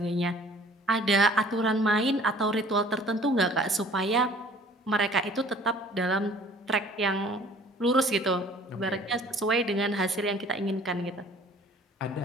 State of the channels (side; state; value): both; normal; correlation 0.52